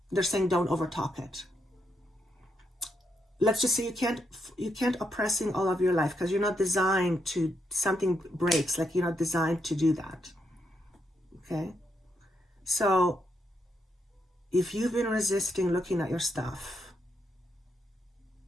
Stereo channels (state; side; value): normal; both; correlation 0.79